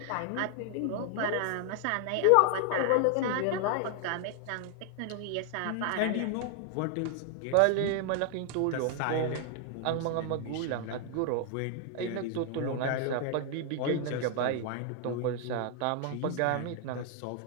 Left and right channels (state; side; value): different; both; correlation 0.00